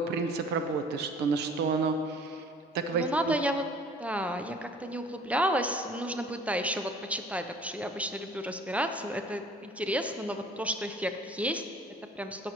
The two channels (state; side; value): normal; both; correlation 0.50